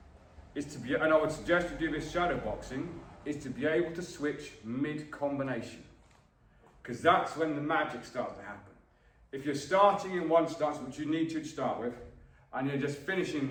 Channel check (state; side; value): identical; both; correlation 1.00